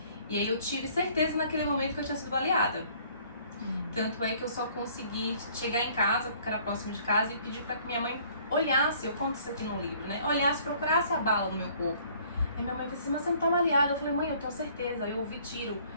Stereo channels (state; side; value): inverted; both; correlation -0.57